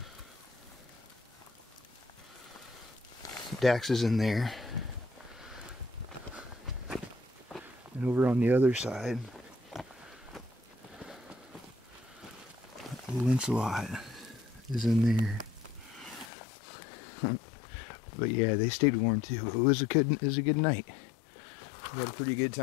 Dax is in there. And over on the other side, Lancelot is in there. But yeah, they stayed warm too. It was a good night. We had a pretty good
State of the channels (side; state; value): right; drops out; at 16.3 s